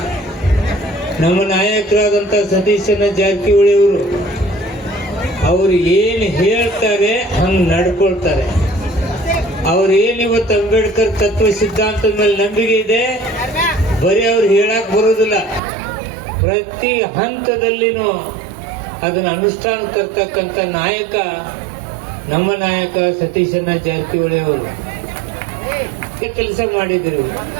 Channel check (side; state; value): left; drops out; at 15.6 s